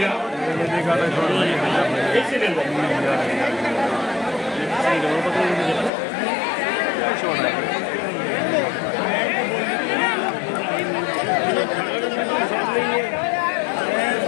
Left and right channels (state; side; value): drops out; right; at 5.9 s